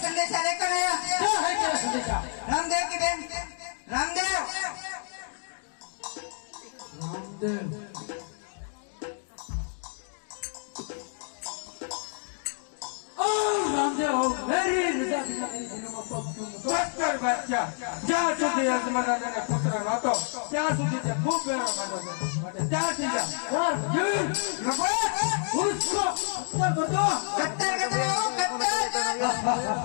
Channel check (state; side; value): silent; right; 58 dB below the other